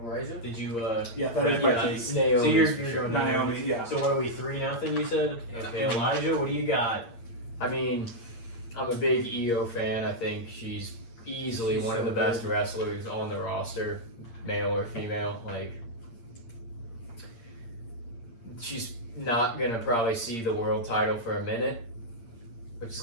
Elijah? Did you Yeah, that is my yeah, take. so Naomi. you're going Naomi, yeah. So what are we 3-0? You said. Okay, Yeah. Elijah, what do you got? I mean, I'm a big EO fan. I think she's easily She's one of so the best good. wrestlers on the roster, male or female. Like, she's not gonna probably see the world title for a minute, which is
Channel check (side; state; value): right; late; 8.7 ms